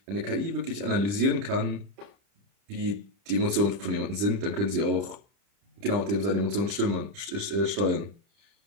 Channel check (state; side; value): late; left; 30 ms